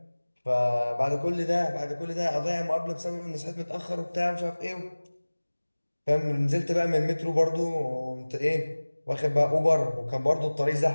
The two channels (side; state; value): both; inverted; correlation -1.00